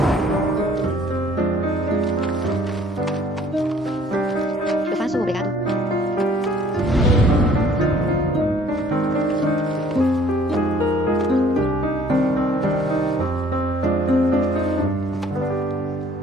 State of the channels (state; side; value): normal; both; correlation 0.56